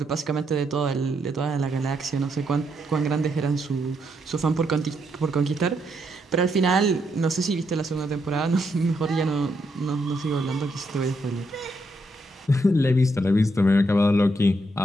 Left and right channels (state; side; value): normal; both; correlation 0.78